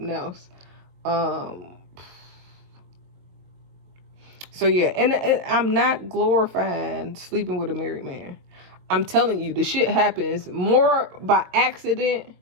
else. So yeah, and I'm not glorifying sleeping with a married man. I'm telling you, the shit happens more by accident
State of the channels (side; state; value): left; late; 22 ms